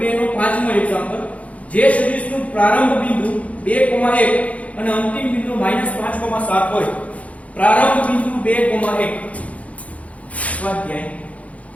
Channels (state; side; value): late; right; 0.066 ms